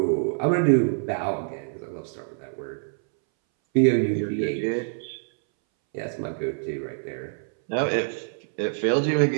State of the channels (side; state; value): left; silent; 61 dB below the other